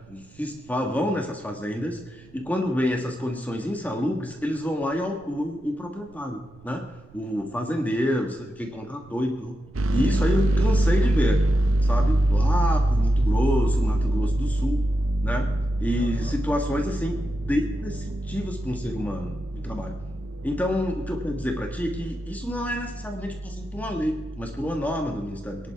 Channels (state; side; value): noise; right; rumble, 24 dB below the sound